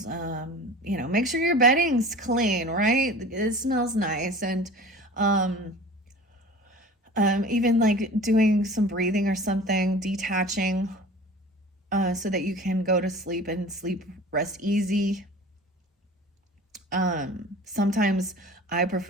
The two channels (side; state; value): both; normal; correlation 0.40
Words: make sure your bedding's clean, right? It smells nice, and even like doing some breathing or something, detaching, so that you can go to sleep and rest easy. Sometimes I